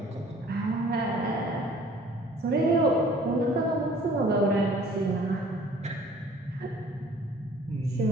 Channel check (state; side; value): normal; both; correlation 0.53